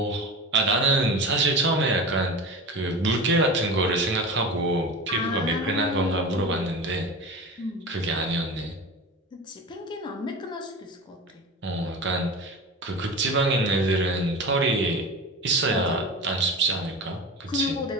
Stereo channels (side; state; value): both; normal; correlation 0.30